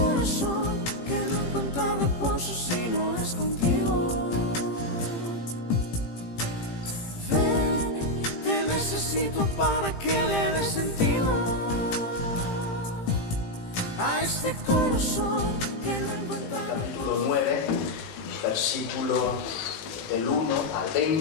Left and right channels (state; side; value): late; right; 18 ms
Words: que no encuentra reposo si no es contigo. Ven, te necesito para que le dé sentido a este corazón que no encuentra reposo. Capítulo 9, versículo del 1 al